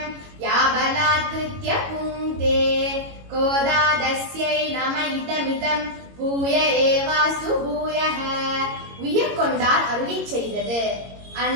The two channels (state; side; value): late; left; 22 ms